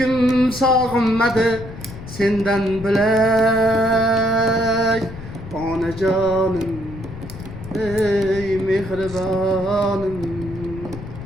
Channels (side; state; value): left; noise; rumble, 13 dB below the sound